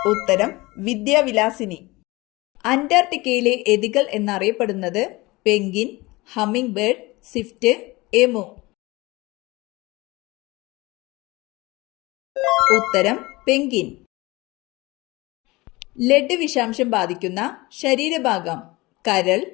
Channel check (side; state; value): right; quieter; 22.1 dB